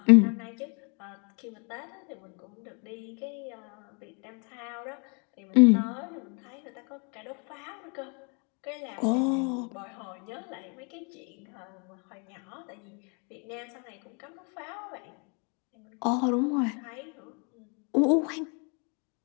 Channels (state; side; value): quieter; right; 35.5 dB